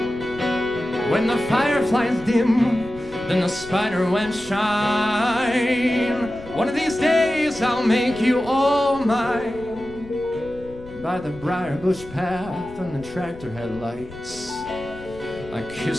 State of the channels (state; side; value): noise; left; rumble, 17 dB below the sound